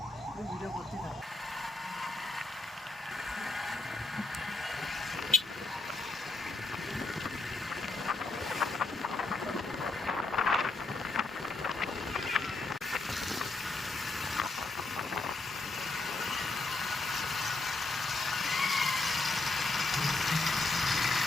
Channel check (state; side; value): quieter; right; 3.2 dB